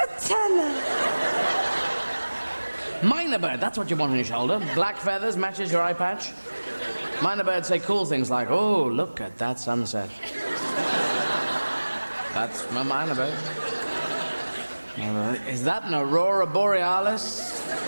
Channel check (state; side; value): inverted; both; correlation -1.00